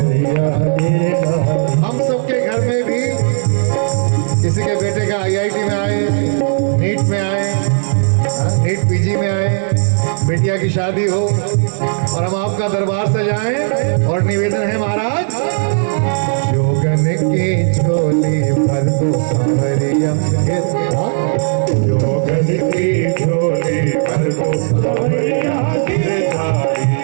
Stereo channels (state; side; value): silent; left; digital silence